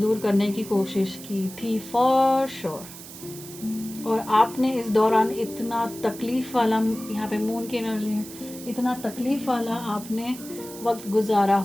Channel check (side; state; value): right; noise; hiss, 15 dB below the sound